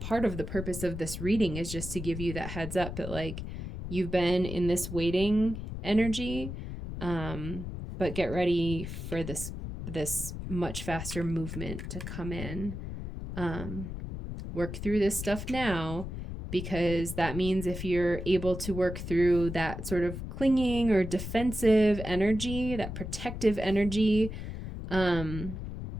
of the purpose of this reading is just to give you that heads up that like you've been in this waiting energy, but get ready for this much faster movement to come in. Work through this stuff now, because that means if you're able to work through that sort of clinging or defensive energy, that protective energy, the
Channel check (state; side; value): noise; left; rumble, 7 dB below the sound